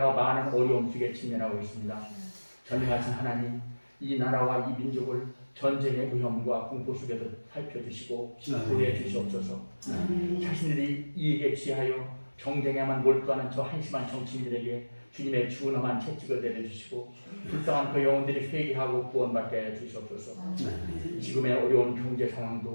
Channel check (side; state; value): both; inverted; correlation -1.00